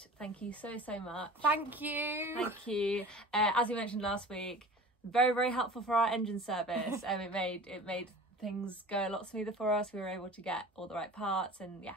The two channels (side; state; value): both; normal; correlation 0.39